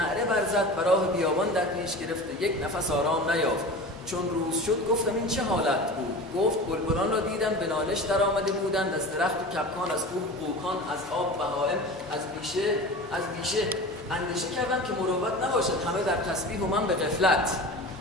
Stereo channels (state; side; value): normal; both; correlation 0.33